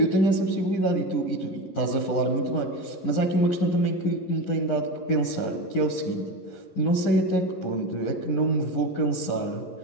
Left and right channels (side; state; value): right; late; 11 ms